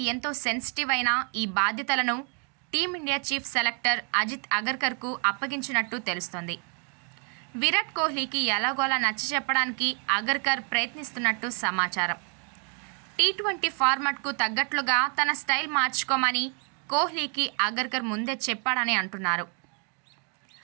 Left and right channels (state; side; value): quieter; left; 39.2 dB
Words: ఎంతో సెన్సిటివ్ అయిన ఈ బాధ్యతలను టీమిండియా చీఫ్ సెలెక్టర్ అజిత్ అగర్కర్కు అప్పగించినట్టు తెలుస్తోంది. విరాట్ కోహ్లీకి ఎలాగోలా నచ్చచెప్పడానికి అగర్కర్ ప్రయత్నిస్తున్నట్టు సమాచారం. టీ20 ఫార్మాట్కు తగ్గట్లుగా తన స్టైల్ మార్చుకోమని కోహ్లీకి అగర్కర్ ముందే చెప్పాడని అంటున్నారు.